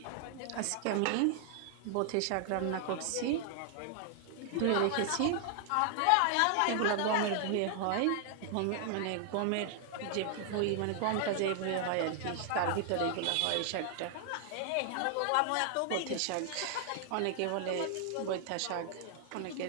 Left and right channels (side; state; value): both; different; correlation 0.00